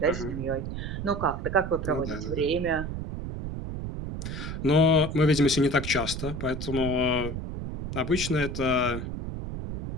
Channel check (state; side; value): noise; right; rumble, 6 dB below the sound